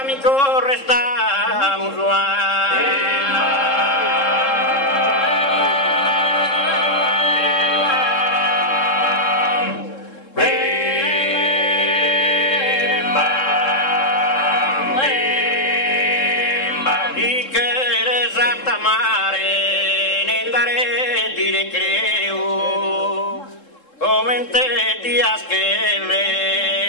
restamus dire creo come in te dias che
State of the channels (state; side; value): late; right; 3.7 ms